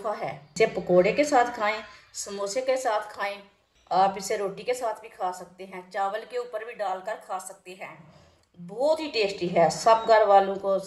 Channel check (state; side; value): identical; both; correlation 1.00